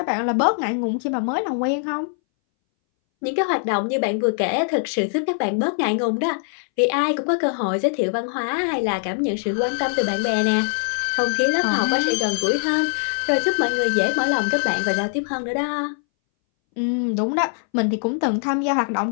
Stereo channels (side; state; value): right; silent; 62 dB below the other